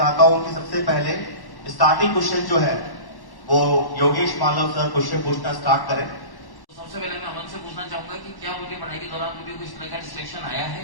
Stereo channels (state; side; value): late; right; 1.1 ms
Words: हूं कि सबसे पहले स्टार्टिंग क्वेश्चन जो है वो योगेश मालव सर क्वेश्चन पूछना स्टार्ट करें। सबसे पहले मैं अमन से पूछना चाहूंगा कि क्या उनकी पढ़ाई के दौरान मुझे कोई तरह का डिस्ट्रैक्शन आया